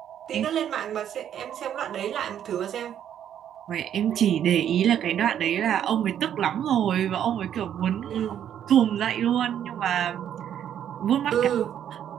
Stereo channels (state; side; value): quieter; left; 9.9 dB